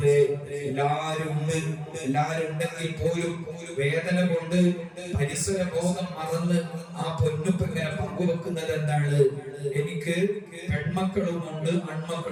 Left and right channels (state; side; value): identical; both; correlation 1.00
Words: എല്ലാരും ഉണ്ടെങ്കിൽ പോലും വേദന കൊണ്ട് പരിസര ബോധം മറന്ന് ആ പൊന്നുപ്പ് ഇങ്ങനെ പങ്കുവെക്കുന്നത് എന്താണ്? എനിക്ക് പെൺമക്കളുമുണ്ട്,